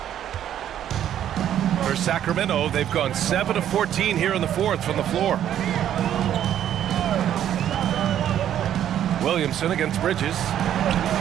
For Sacramento, they've gone 7 of 14 here in the fourth from the floor. Williamson against Bridges.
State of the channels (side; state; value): left; quieter; 10.7 dB